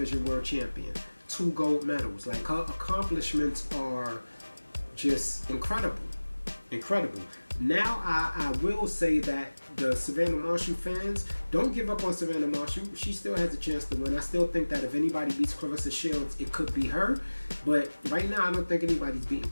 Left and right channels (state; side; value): inverted; both; correlation -1.00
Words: world champion, 2 gold medals. Like, her accomplishments are just incredible. Now, I will say that the Savannah Marshall fans, don't give up on Savannah Marshall. She still has a chance to win. I still think that if anybody beats Claressa Shields, it could be her. But right now, I don't think anybody's beating